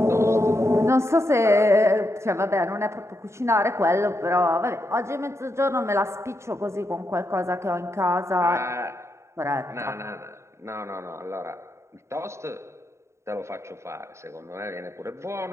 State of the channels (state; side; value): late; left; 0.13 ms